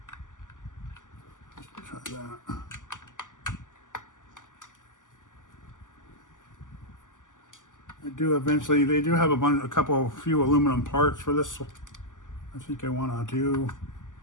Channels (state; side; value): late; right; 0.87 ms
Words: Let's try that. I do eventually, they do have a few aluminum parts for this. I think I want to do,